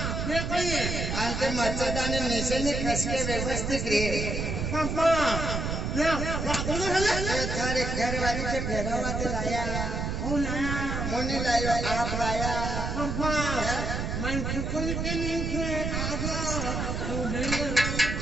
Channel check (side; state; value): right; noise; rumble, 2 dB below the sound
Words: अंते मच्छरदानी नीचे ने खस के व्यवस्थित रे थारे घर वाली के फेरवा ते लाया मोनी लायो आप लाया मैं खुद के नीचे आजा